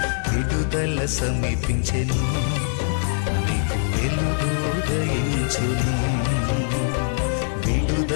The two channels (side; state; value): right; silent; digital silence